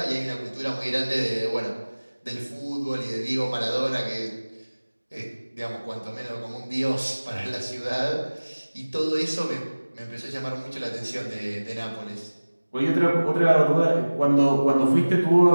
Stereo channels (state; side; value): inverted; both; correlation -1.00